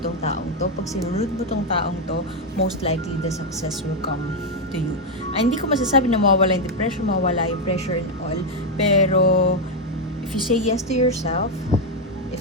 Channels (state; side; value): normal; both; correlation 0.04